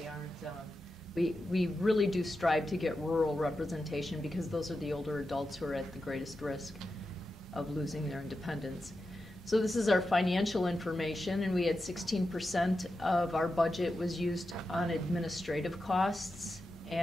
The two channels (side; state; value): both; normal; correlation 0.90